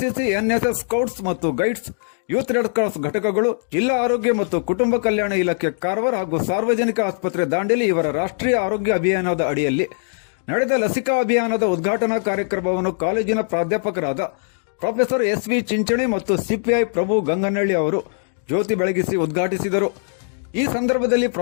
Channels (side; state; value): right; silent; digital silence